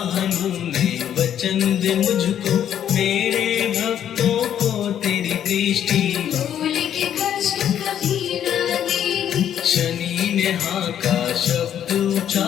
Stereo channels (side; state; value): right; quieter; 10.0 dB